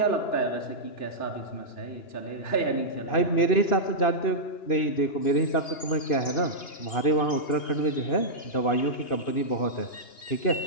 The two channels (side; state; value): right; late; 2.8 ms